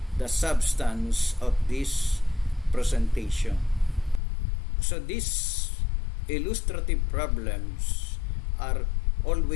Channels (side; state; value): right; drops out; at 4.2 s